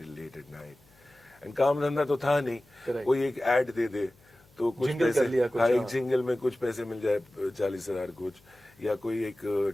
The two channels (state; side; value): noise; left; hum, 30 dB below the sound